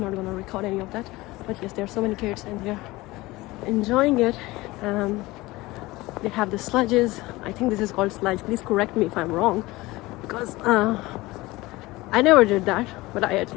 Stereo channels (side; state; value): right; quieter; 20.2 dB